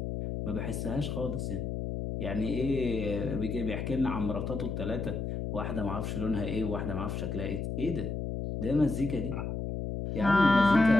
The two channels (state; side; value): noise; left; hum, 3 dB below the sound